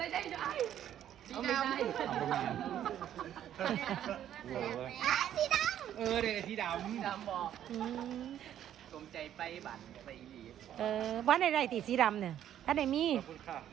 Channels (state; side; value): quieter; left; 10.8 dB